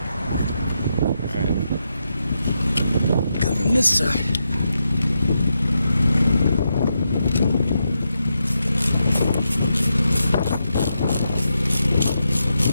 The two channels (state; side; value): inverted; both; correlation -0.85